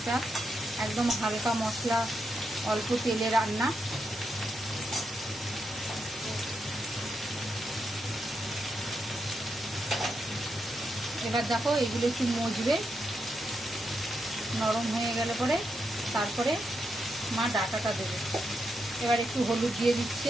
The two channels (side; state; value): both; normal; correlation 0.83